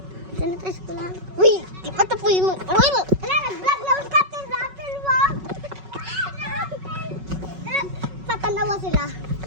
Uy, di pa tapoy mo. Uy! Ala, nag-vlog na ulit Captain Rapper mo! Tatanawa sila.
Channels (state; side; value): late; left; 5.4 ms